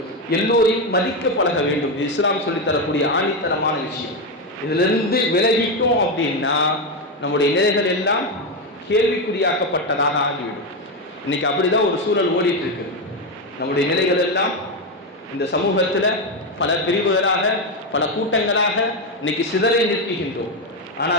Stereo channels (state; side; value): normal; both; correlation 0.10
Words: எல்லோரையும் மதிக்க பழக வேண்டும். இஸ்லாம் சொல்லித்தரக்கூடிய ஆணித்தரமான விஷயம். இதிலிருந்து விலகிட்டோம் அப்படின்னா நம்முடைய நிலைகள் எல்லாம் கேள்விக்குறியாக்கப்பட்டதாக ஆகிவிடும். இன்னைக்கு அப்படிதான் ஒரு சூழல் ஓடிட்டு இருக்கு. நம்முடைய நிலைகள் எல்லாம் இந்த சமூகத்துல பல பிரிவுகளாக, பல கூட்டங்களாக இன்னைக்கு சிதறை நிற்கின்றோம்.